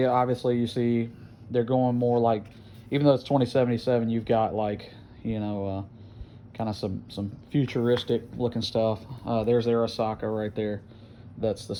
obviously you see they're going more like, even though it's 2077, you've got like kind of some futuristic looking stuff. There's Arasaka right there. That's the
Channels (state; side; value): identical; both; correlation 1.00